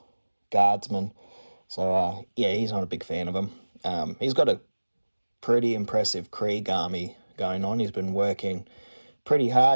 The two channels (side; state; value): both; inverted; correlation -1.00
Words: guardsmen. So yeah, he's not a big fan of them. He's got a pretty impressive Krieg army going on. He's been working pretty